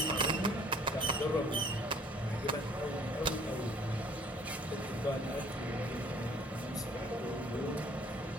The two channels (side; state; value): both; normal; correlation 0.57